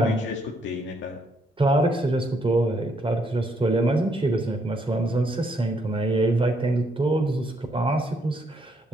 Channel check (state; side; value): normal; both; correlation 0.73